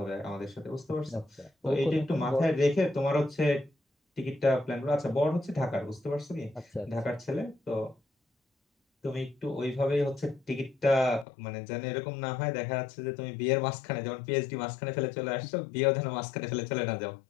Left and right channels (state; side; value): drops out; right; at 11.2 s